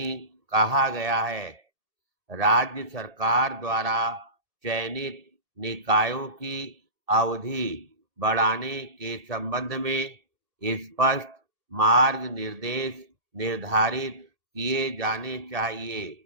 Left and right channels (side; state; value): left; late; 2.7 ms